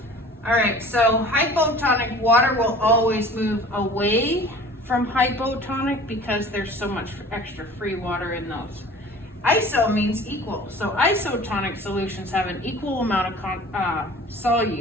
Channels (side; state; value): both; normal; correlation 0.45